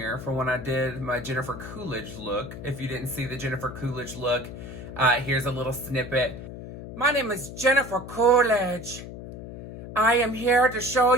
for when I did my Jennifer Coolidge look. If you didn't see the Jennifer Coolidge look, here's a little snippet. My name is Jennifer Coolidge. I am here to show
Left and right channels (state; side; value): noise; left; hum, 11 dB below the sound